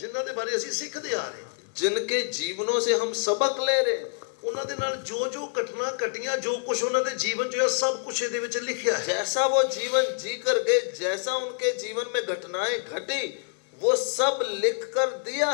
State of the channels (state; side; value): quieter; right; 38.7 dB